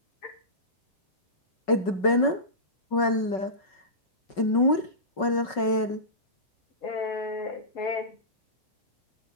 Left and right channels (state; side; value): late; right; 5.3 ms